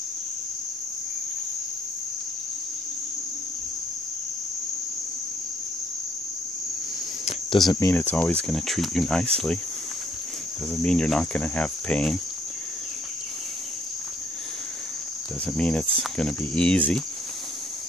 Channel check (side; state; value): both; normal; correlation 0.66